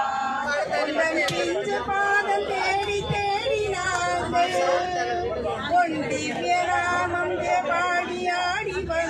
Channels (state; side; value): identical; both; correlation 1.00